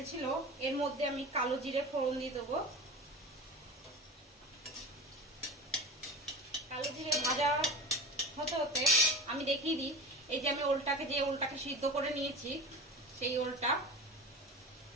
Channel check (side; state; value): both; normal; correlation 0.30